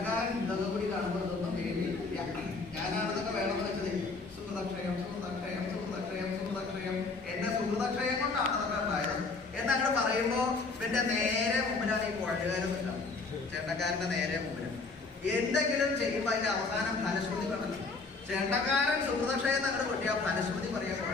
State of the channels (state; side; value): quieter; right; 4.0 dB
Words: ഇതൊക്കെ കൂടി കാണുമ്പോൾ ഇതൊന്നും പേടിയില്ല. ഞാനാണിതൊക്കെ വേണമെന്ന് വെച്ചത്. സുഹൃതക്ഷയം സുഹൃതക്ഷയം സുഹൃതക്ഷയം സുഹൃതക്ഷയം എന്റെ സുഹൃതക്ഷയം കൊണ്ടാണ് അതൊക്കെ ഉണ്ടായത് എന്നങ്ങനെ പറയുമ്പോ പിന്നെ നേരെ മുമ്പിലാണ് ഈ കുഴലുകാരൻ നിൽക്കാം. ചേട്ടക്കാരന്റെ നേരെ മുമ്പിൽ എന്തെങ്കിലും ചെയ്യുമ്പോ അതിന്റെ അവസാനം ഫലശ്രുതി കണ്ടല്ലോ. ചെണ്ടക്കാരൻ സുഹൃതക്ഷയം അങ്ങനെ കൊട്ടിയ ഫലശ്രുതി പറയാൻ